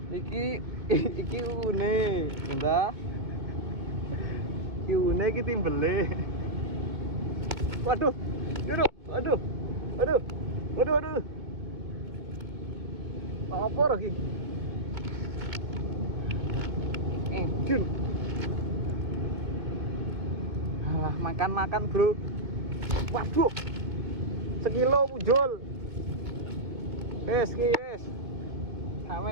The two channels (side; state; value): left; late; 2.1 ms